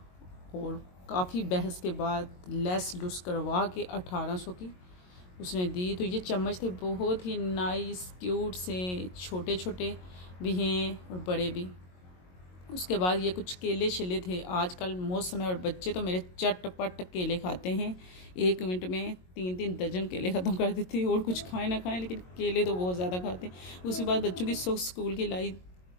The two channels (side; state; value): right; late; 22 ms